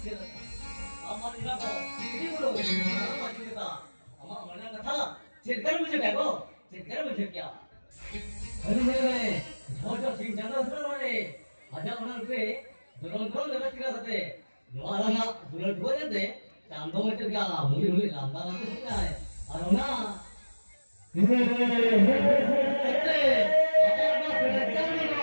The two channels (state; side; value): inverted; both; correlation -1.00